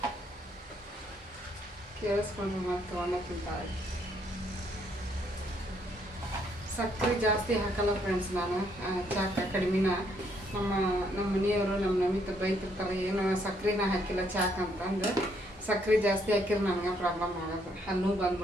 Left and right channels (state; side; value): normal; both; correlation 0.71